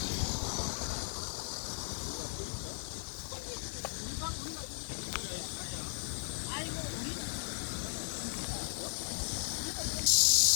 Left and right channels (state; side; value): silent; right; 54 dB below the other